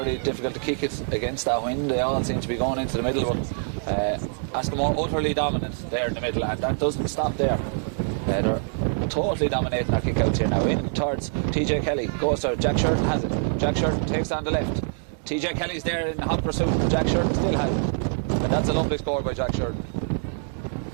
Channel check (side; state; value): left; silent; digital silence